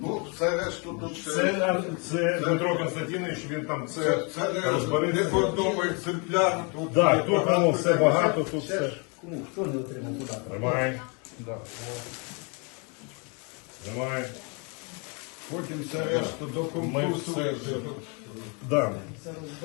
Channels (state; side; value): quieter; right; 33.6 dB